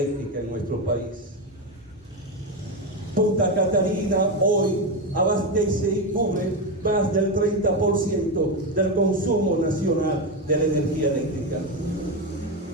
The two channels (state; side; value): normal; both; correlation 0.13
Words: en nuestro país. Punta Catalina hoy abastece y cubre más del 30% del consumo nacional de la energía eléctrica.